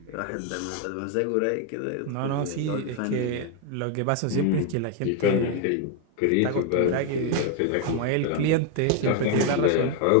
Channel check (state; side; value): different; both; correlation 0.01